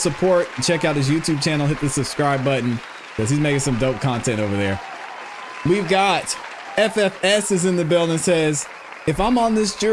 Check out his YouTube channel. Hit the subscribe button because he's making some dope content over there. We've got FFS is in the building, says, if I'm on this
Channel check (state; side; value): identical; both; correlation 1.00